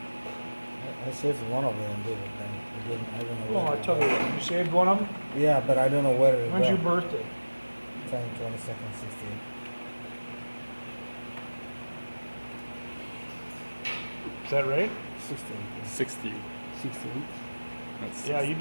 I saved one of them, did it? Then it didn't, I don't know. Well, I'll tell you what. You saved one of them? Yeah, but I don't know where it When's your went. birthday? 10/22/16. Is that right? 16. 60. 16. That's Yeah, you'd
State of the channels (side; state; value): both; inverted; correlation -1.00